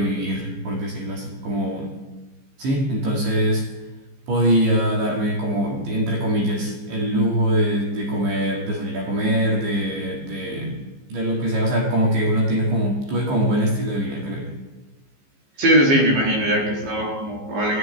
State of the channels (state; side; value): late; left; 15 ms